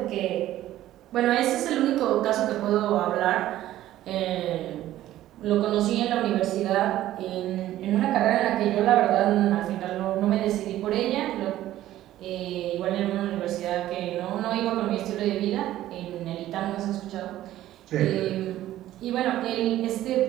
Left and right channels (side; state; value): left; quieter; 13.9 dB